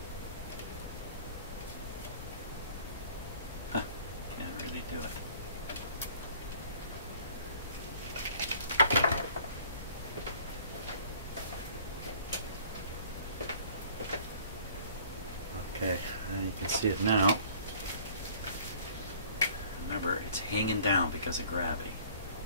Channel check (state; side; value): inverted; both; correlation -0.53